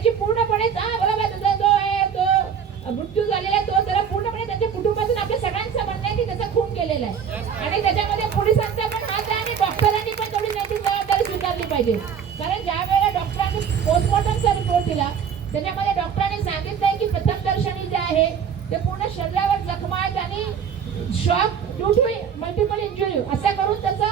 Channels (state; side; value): quieter; left; 7.5 dB